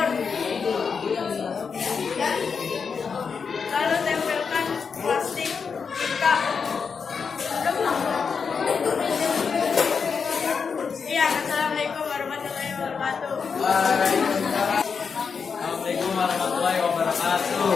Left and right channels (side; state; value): right; quieter; 5.8 dB